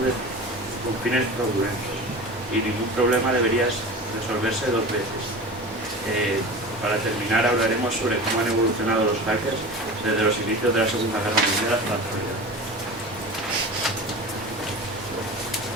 fines fraudulentos, y ningún problema debería resolverse dos veces. Para terminar, hablaremos sobre cómo han evolucionado los hackers desde los inicios de la Segunda Guerra Mundial hasta la actualidad.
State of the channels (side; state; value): both; normal; correlation 0.33